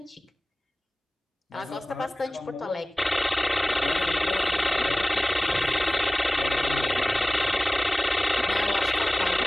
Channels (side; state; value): both; normal; correlation 0.98